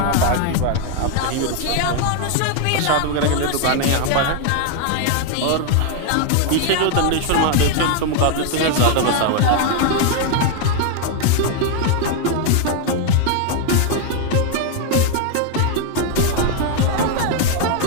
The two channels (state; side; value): different; both; correlation 0.01